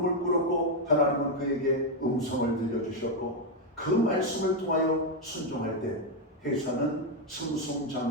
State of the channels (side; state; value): both; normal; correlation 0.03